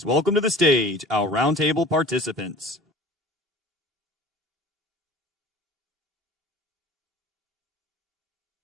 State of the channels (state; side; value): normal; both; correlation 0.43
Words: welcome to the stage our roundtable participants.